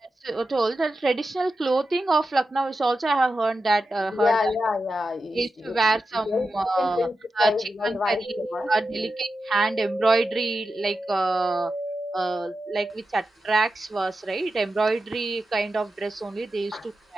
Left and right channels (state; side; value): normal; both; correlation 0.90